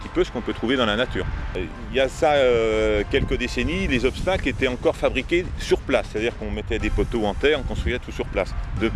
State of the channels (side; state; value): both; identical; correlation 1.00